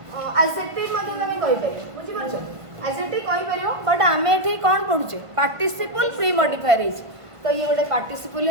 एडजेक्टिव मध्ये तमे कहि परियो बुझि परछ एडजेक्टिव कहि परियो बट आमे एठी कोन पढुचे पार्टिसिपल प्री मॉडिफायर है तो ये गोटे पार्टिसिपल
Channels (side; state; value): left; late; 1.5 ms